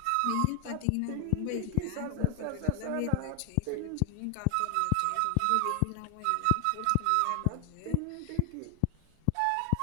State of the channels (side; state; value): both; different; correlation 0.00